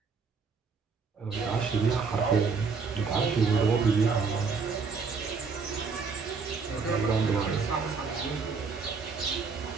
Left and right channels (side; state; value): left; quieter; 5.0 dB